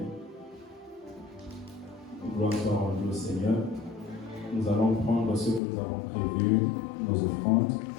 Gloire soit rendue au Seigneur. Nous allons prendre ce que nous avons prévu, nos offrandes.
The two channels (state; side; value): drops out; right; at 5.6 s